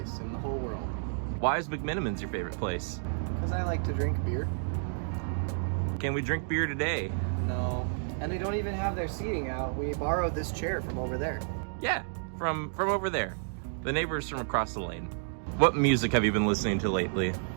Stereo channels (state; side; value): silent; left; digital silence